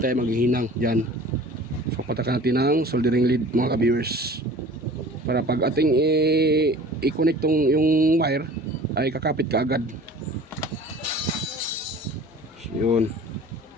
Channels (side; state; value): both; normal; correlation 0.44